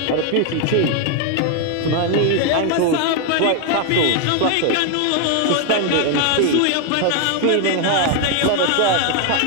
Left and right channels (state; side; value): different; both; correlation 0.01